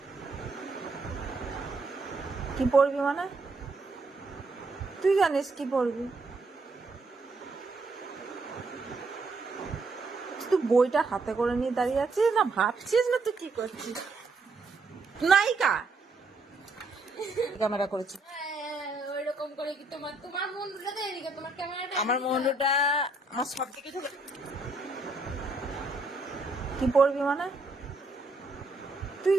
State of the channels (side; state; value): left; quieter; 3.3 dB